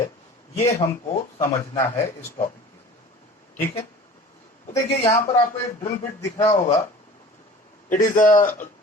ये हमको समझना है इस टॉपिक में। ठीक है, तो देखिए यहां पर आपको एक ड्रिल बिट दिख रहा होगा। It is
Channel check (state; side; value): normal; both; correlation 0.42